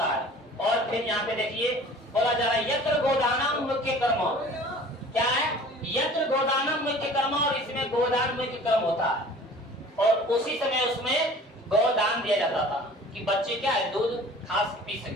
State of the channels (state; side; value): normal; both; correlation 0.46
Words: है। और फिर यहाँ पे देखिए बोला जा रहा है यत्र गोदानम मुख्य कर्म। क्या है, यत्र गोदानम मुख्य कर्म, और इसमें गोदान मुख्य कर्म होता है। और उसी समय उसमें गोदान दिया जाता था कि बच्चे क्या है दूध खास पी